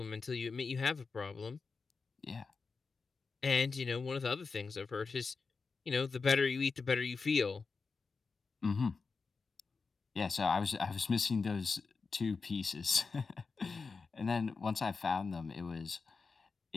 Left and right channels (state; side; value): quieter; right; 4.6 dB